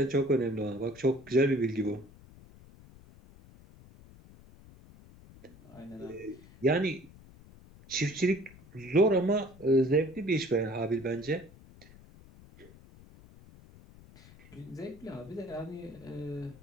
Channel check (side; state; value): left; noise; rumble, 22 dB below the sound